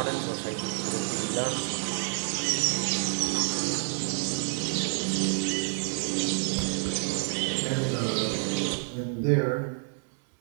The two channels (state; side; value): silent; left; 59 dB below the other